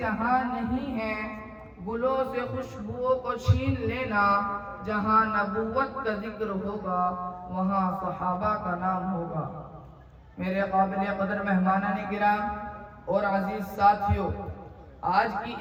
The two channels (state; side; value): identical; both; correlation 1.00